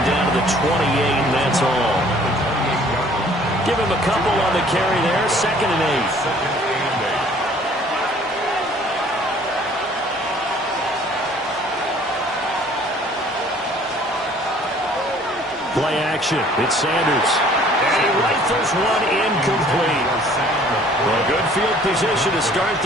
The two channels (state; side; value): normal; both; correlation 0.55